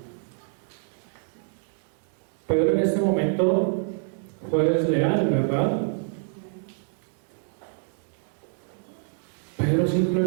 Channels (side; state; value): left; silent; 60 dB below the other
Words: Pedro en este momento fue desleal, ¿verdad? Pedro